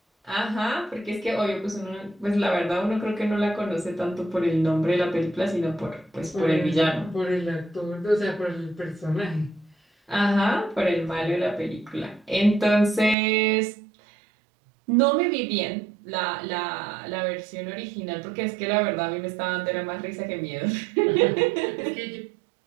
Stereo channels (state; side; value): drops out; left; at 13.2 s